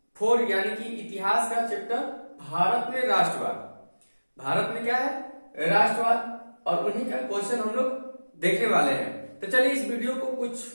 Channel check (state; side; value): inverted; both; correlation -1.00